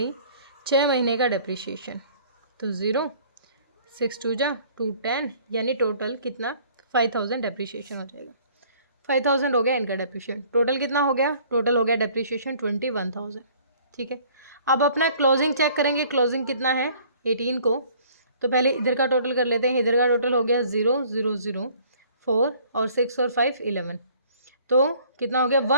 6 महीने का डेप्रिशिएशन। तो 0 6 2 जा 2 10, यानी टोटल कितना? 5,000 डेप्रिशिएशन हो जाएगा। 5,000 हो गया इनका डेप्रिशिएशन। टोटल कितना हो गया? टोटल हो गया डेप्रिशिएशन 21,000। ठीक है, अब अपना क्लोजिंग चेक करेंगे। क्लोजिंग कितना है 18 को? तो पहले इधर का टोटल कर लेते हैं। इधर का टोटल हो गया 0 0 0 4 और 6 और 5 11, तो कितना हो गया?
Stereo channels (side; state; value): both; inverted; correlation -0.55